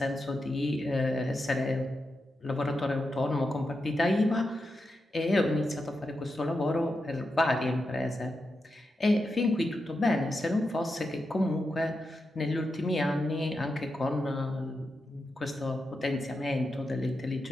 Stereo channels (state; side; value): normal; both; correlation 0.88